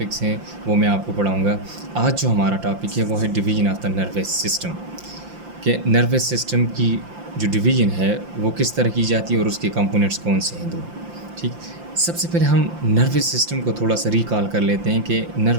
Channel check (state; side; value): late; left; 5.8 ms